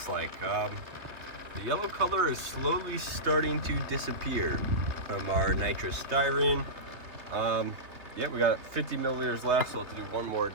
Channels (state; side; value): late; left; 3.3 ms